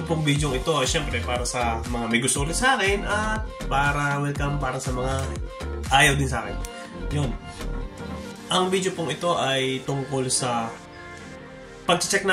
pong video ito ay syempre para sa mga may gusto ulit sa akin at para welcome para sa mga ayaw din sa akin. Yun. Ang video pong ito ay tungkol sa pag-check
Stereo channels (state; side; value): identical; both; correlation 1.00